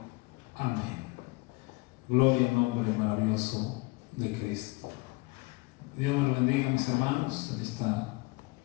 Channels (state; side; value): quieter; right; 25.7 dB